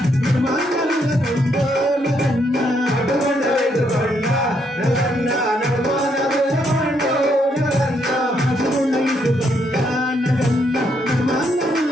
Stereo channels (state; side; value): normal; both; correlation 0.74